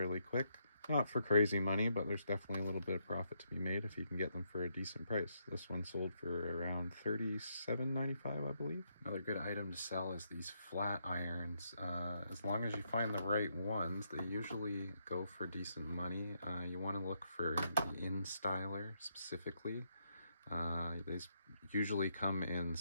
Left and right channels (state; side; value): inverted; both; correlation -0.78